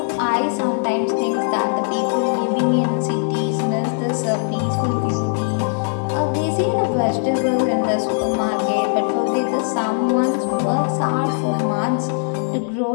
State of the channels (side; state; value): right; silent; digital silence